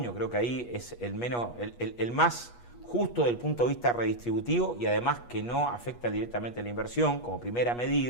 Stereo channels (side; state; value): right; late; 8.3 ms